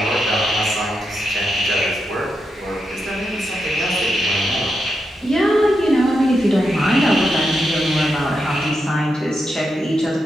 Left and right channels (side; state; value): both; normal; correlation 0.85